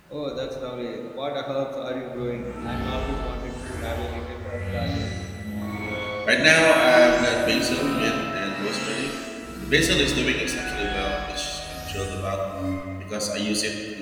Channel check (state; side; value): identical; both; correlation 1.00